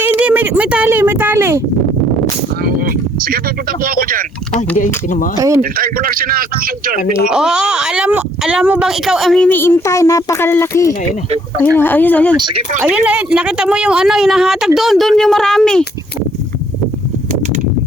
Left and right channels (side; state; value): both; normal; correlation 0.65